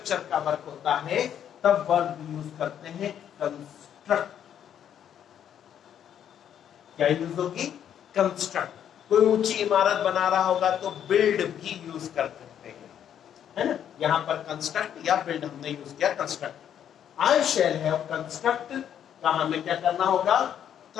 का वर्क होता है, तब वर्ब यूज करते हैं कंस्ट्रक्ट। क्या यूज होगी? कंस्ट्रक्ट। कोई ऊंची इमारत बना रहा होगा तो बिल्ड भी यूज कर सकते हैं, है ना। यहां पर कंस्ट्रक्ट या बिल्ड हमने यूज किया construct. I shall have construct का हमें क्या करना होगा?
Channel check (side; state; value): right; quieter; 9.5 dB